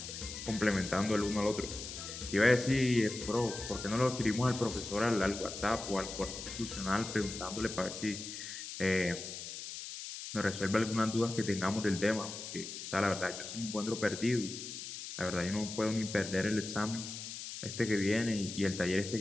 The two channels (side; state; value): left; noise; hiss, 9 dB below the sound